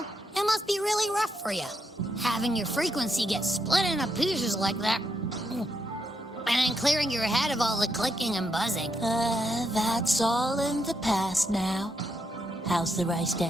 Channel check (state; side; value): normal; both; correlation 0.80